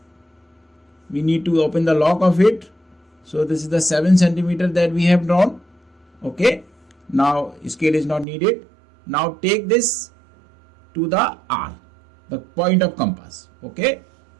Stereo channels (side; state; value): left; drops out; at 8.2 s